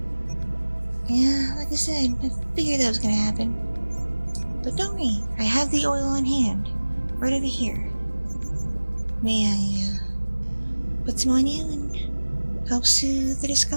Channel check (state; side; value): inverted; both; correlation -1.00